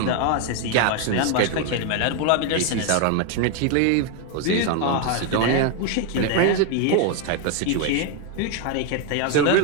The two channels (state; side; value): different; both; correlation 0.01